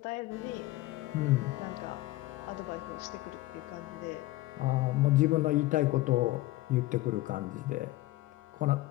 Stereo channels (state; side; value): quieter; right; 17.7 dB